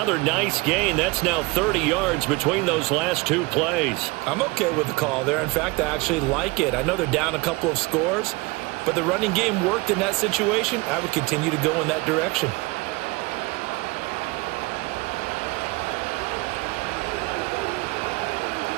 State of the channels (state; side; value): quieter; left; 24.4 dB